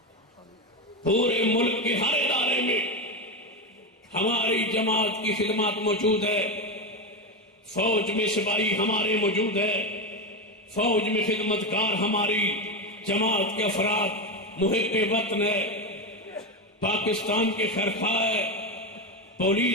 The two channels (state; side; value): normal; both; correlation 0.14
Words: پورے ملک کے ہر ادارے میں ہماری جماعت کی خدمات موجود ہے، فوج میں سپاہی ہمارے موجود ہے، فوج میں خدمتگار ہماری جماعت کے افراد محب وطن ہے، پاکستان کے خیرخواہ ہے،